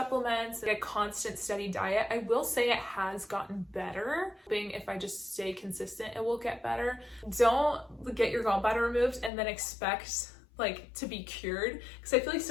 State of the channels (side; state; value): right; drops out; at 9.3 s